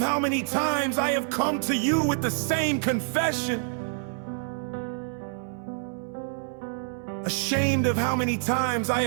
many times I have come to you with the same confession. Ashamed of how many times I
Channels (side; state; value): left; silent; 60 dB below the other